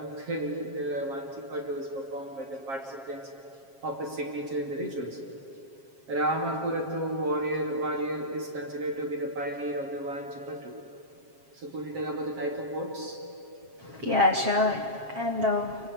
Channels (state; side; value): late; left; 7.4 ms